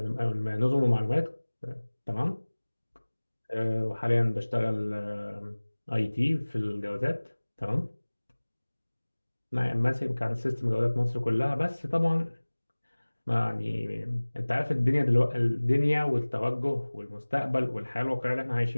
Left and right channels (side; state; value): both; inverted; correlation -1.00